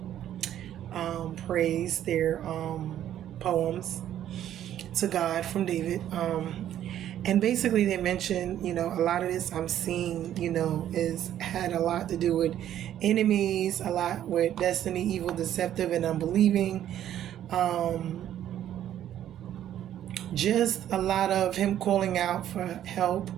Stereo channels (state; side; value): quieter; left; 11.3 dB